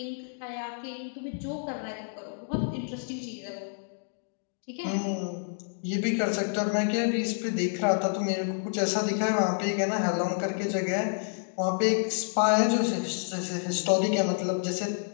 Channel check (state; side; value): silent; right; digital silence